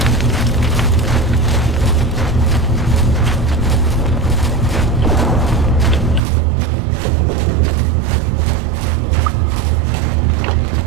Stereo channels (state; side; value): drops out; left; at 6.2 s